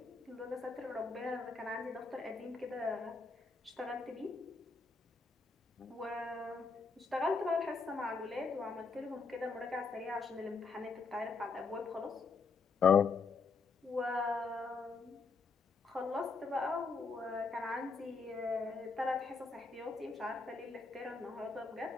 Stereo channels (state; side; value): quieter; right; 4.5 dB